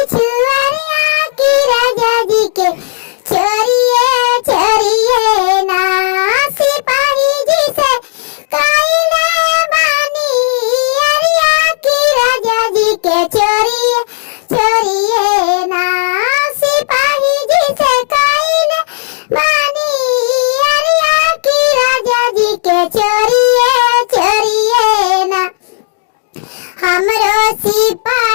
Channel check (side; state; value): right; silent; digital silence